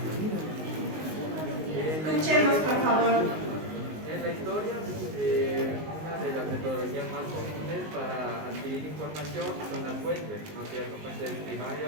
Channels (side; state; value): left; late; 19 ms